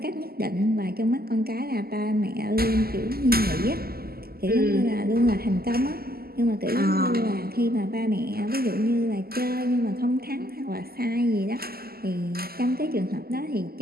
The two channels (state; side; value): late; left; 0.45 ms